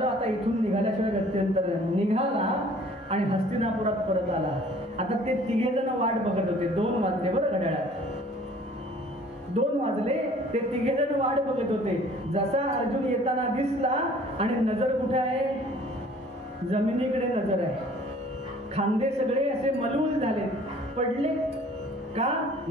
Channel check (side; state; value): both; normal; correlation 0.53